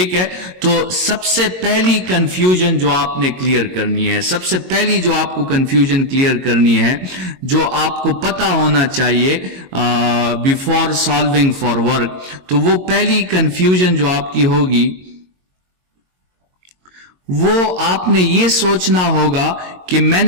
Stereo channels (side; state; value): left; late; 22 ms